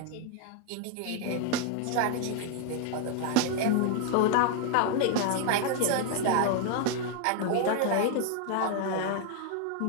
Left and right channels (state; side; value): different; both; correlation 0.00